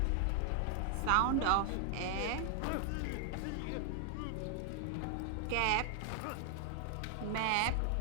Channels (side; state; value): both; different; correlation 0.00